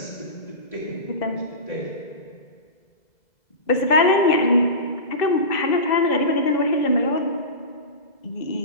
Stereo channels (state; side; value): late; right; 2.0 ms